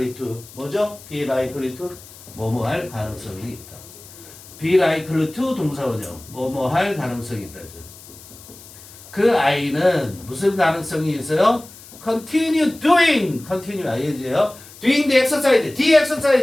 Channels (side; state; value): left; noise; hiss, 19 dB below the sound